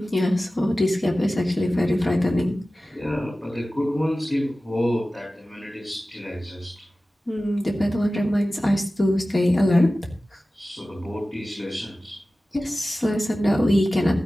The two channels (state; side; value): normal; both; correlation 0.96